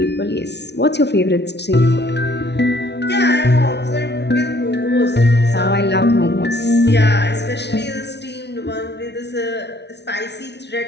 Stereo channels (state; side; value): late; right; 0.50 ms